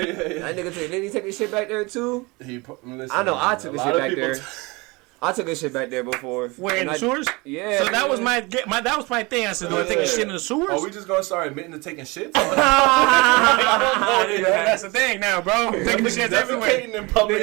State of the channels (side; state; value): left; quieter; 25.4 dB